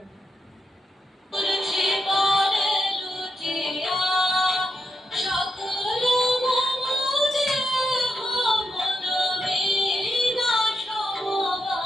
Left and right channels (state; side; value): normal; both; correlation 0.84